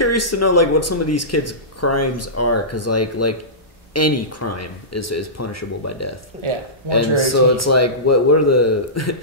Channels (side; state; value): both; normal; correlation -0.19